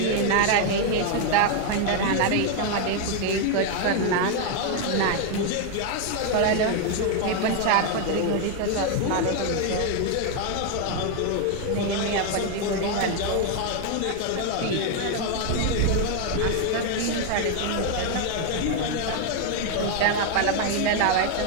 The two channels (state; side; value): different; both; correlation 0.01